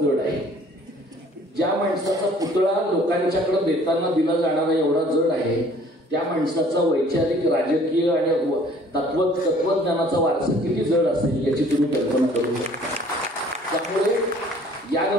जड आहे. ज्या माणसाचा पुतळा लोकांच्याकडे देताना दिला जाणारा एवढा जड आहे, त्या माणसाचा वैचारिक, राजकीय आणि तत्वज्ञानाचा वारसा किती जड असेल याची तुम्ही कल्पना करू शकता. त्यामुळे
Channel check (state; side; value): normal; both; correlation 0.55